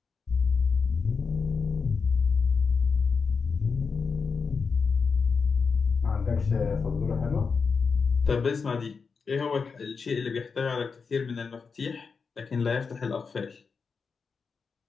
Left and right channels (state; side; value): quieter; right; 5.2 dB